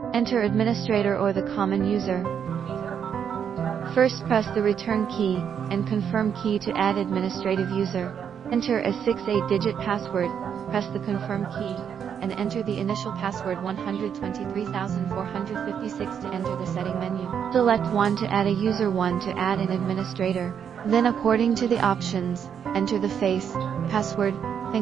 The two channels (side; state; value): left; quieter; 8.0 dB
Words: Enter administrator or the common user. First press the return key and confirm key to add administrative user. Enter a 6-8-digit password, press the confirm key, and enter the initial password 123,456 to enter the setting menu. Select 1 to add a user, 1 to add an administrator. Then according to the options, enter the face, password,